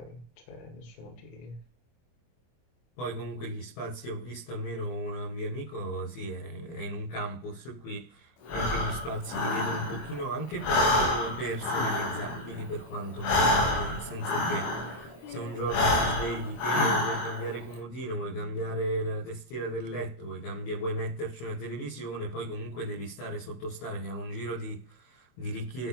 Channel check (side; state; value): right; late; 25 ms